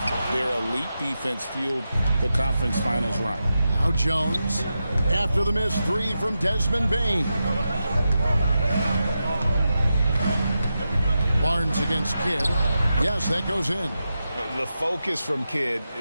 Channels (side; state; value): both; inverted; correlation -0.89